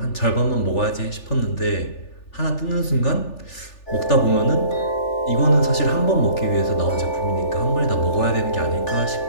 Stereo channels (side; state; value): right; late; 3.4 ms